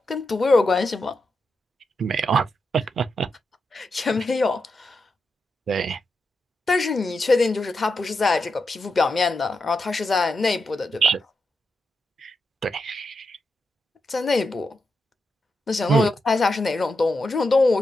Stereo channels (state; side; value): normal; both; correlation 0.86